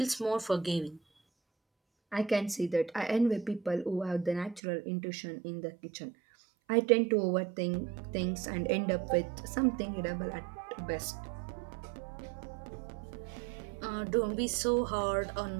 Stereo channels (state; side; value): drops out; left; at 4.6 s